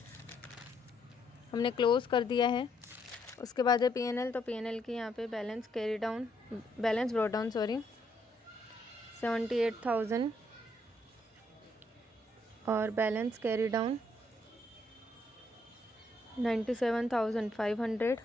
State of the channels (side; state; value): both; normal; correlation 0.72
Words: हमने क्लोज़ कर दिया है। उसके बाद है P&L, तो P&L की यहाँ पे बैलेंस ब्रॉट डाउन 78,000 और बैलेंस कैरी डाउन 97,500।